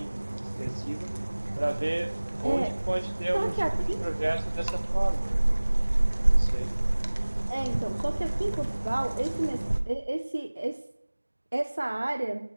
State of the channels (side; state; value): both; inverted; correlation -1.00